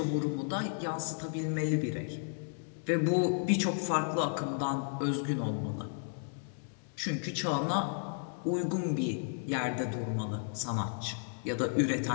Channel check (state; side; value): silent; right; digital silence